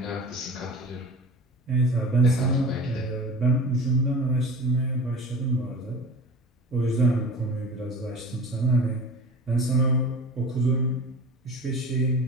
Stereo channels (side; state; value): both; normal; correlation 0.37